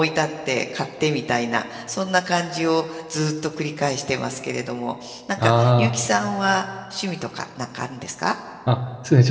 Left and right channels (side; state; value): both; identical; correlation 1.00